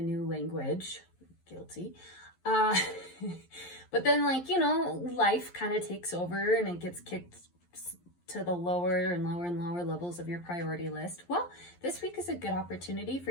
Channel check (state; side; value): late; right; 11 ms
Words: language, guilty, but then life kind of takes over and it gets kicked to the lower and lower and lower levels of your priority list. Well, this week is a good opportunity for